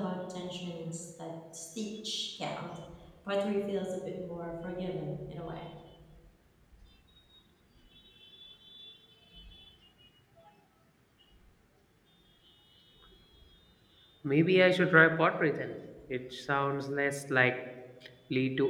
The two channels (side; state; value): both; identical; correlation 1.00